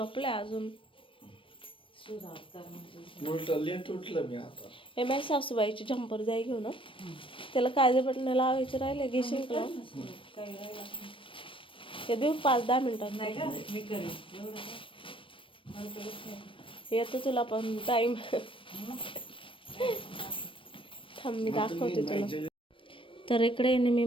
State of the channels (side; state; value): right; late; 0.25 ms